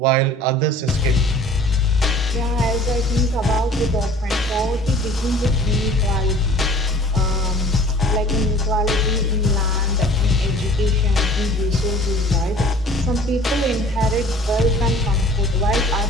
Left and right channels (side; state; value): both; normal; correlation 0.49